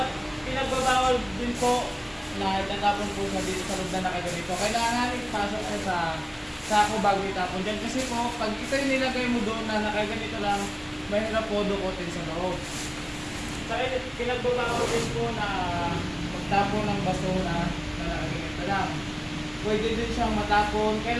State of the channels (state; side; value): identical; both; correlation 1.00